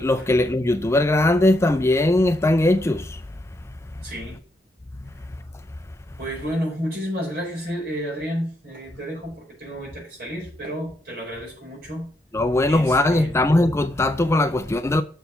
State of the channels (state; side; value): normal; both; correlation 0.78